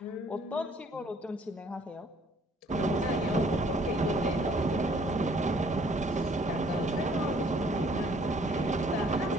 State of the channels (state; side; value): normal; both; correlation 0.60